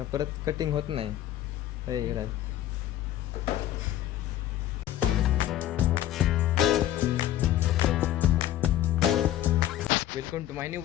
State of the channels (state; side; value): quieter; right; 12.7 dB